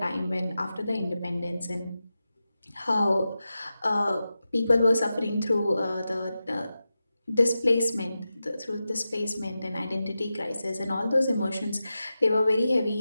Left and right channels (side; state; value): both; inverted; correlation -0.92